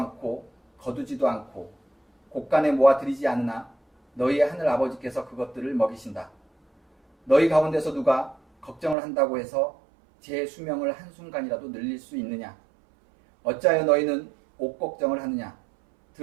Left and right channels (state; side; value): drops out; left; at 9.0 s